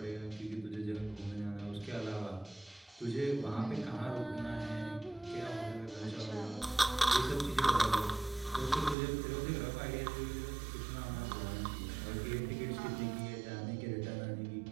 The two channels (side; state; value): left; drops out; at 9.0 s